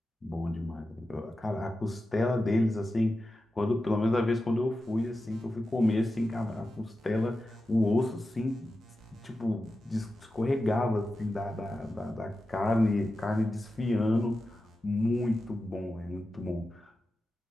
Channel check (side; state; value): both; normal; correlation 0.92